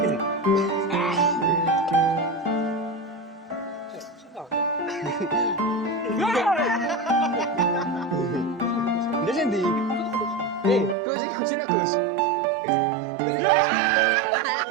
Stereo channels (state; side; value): drops out; left; at 11.0 s